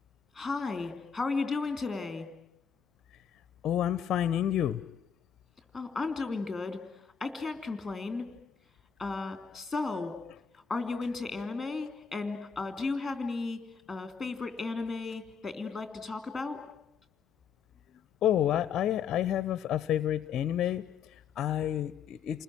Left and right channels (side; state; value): right; quieter; 6.9 dB